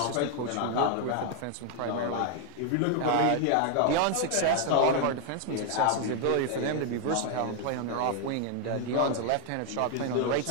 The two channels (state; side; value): different; both; correlation 0.00